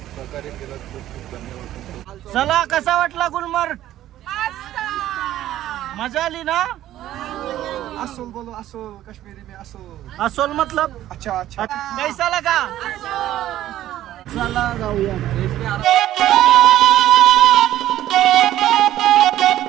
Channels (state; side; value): quieter; left; 13.2 dB